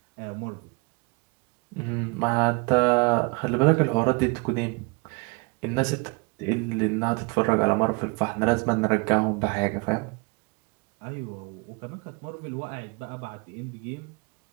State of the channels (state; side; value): quieter; left; 29.6 dB